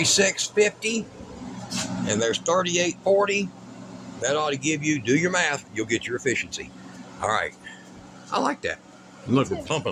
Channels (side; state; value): both; identical; correlation 1.00